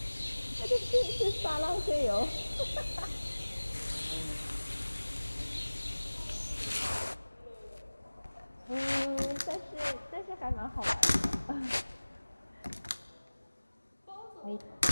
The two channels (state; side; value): inverted; both; correlation -1.00